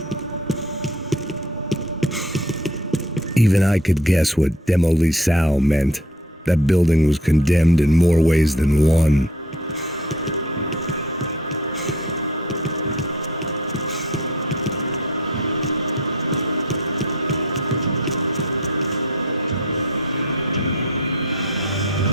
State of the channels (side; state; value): both; normal; correlation 0.49